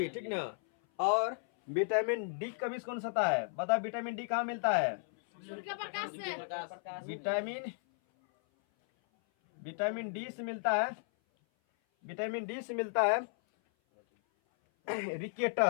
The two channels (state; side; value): silent; right; 55 dB below the other